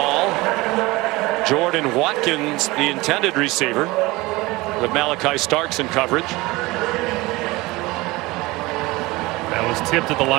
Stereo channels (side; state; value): left; quieter; 21.4 dB